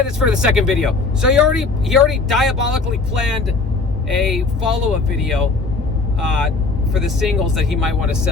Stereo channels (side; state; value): right; quieter; 3.9 dB